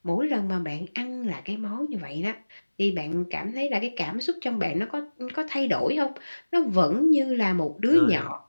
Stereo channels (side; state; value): both; inverted; correlation -1.00